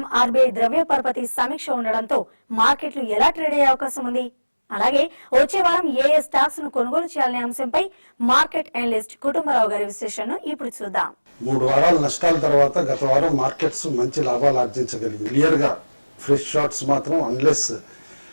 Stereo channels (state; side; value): inverted; both; correlation -1.00